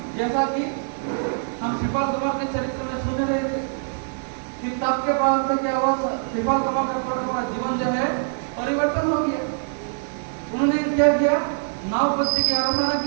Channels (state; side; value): silent; left; digital silence